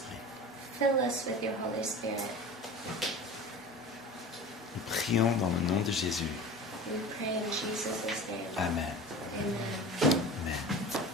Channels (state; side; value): normal; both; correlation 0.36